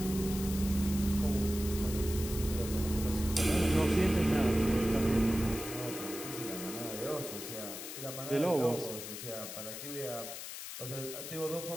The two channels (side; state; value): left; noise; hiss, 9 dB below the sound